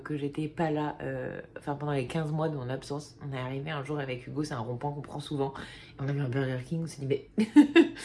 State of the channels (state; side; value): identical; both; correlation 1.00